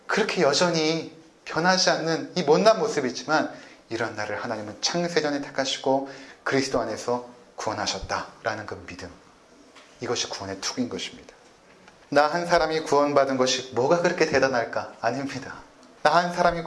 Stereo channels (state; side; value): identical; both; correlation 1.00